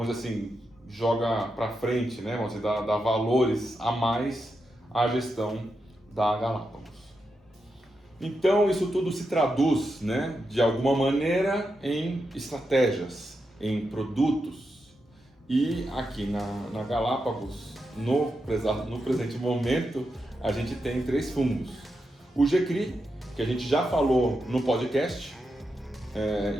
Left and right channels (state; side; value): normal; both; correlation 0.86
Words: dizer assim, joga para frente, né? Vamos dizer, dá valores a mais à gestão da Galápagos. Então isso tudo se traduz, né, de alguma maneira em estratégias, em produtos. E aqui na Galápagos, no presente momento, a gente tem 3 fundos. O GCRI, que a gente já falou no podcast,